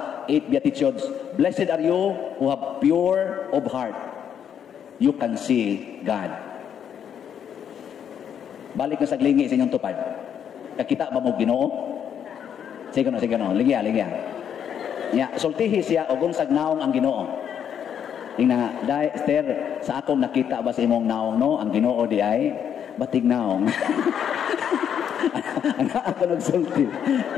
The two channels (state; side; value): quieter; right; 8.6 dB